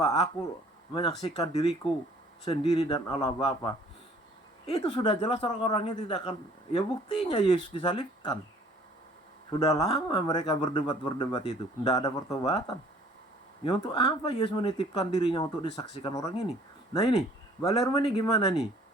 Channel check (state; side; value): normal; both; correlation 0.55